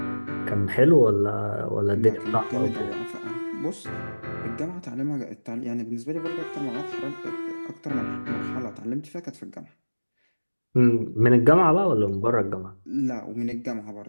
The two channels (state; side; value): inverted; both; correlation -1.00